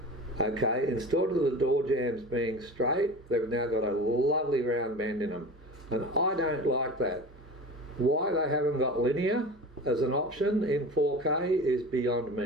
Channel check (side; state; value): both; normal; correlation 0.34